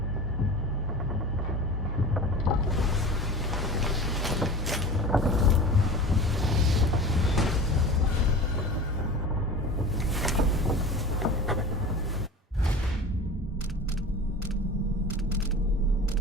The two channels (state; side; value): normal; both; correlation 0.35